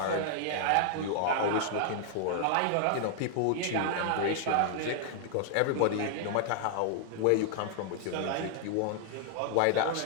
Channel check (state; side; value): different; both; correlation 0.00